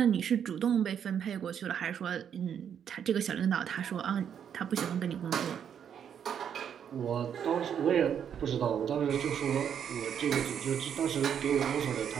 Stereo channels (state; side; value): quieter; left; 8.4 dB